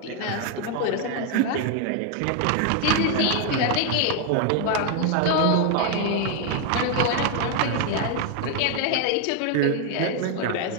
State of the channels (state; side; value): different; both; correlation 0.01